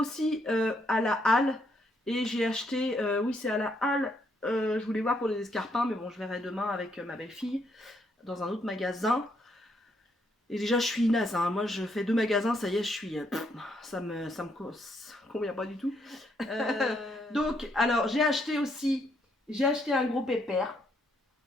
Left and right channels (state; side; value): normal; both; correlation 0.74